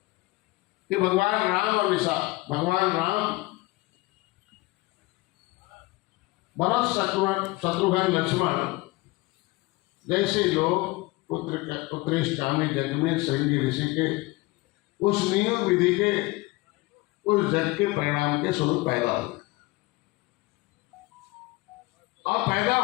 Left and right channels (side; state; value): right; quieter; 21.8 dB